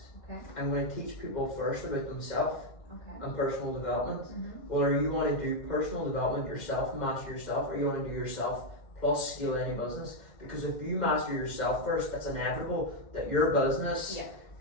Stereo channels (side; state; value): right; late; 2.1 ms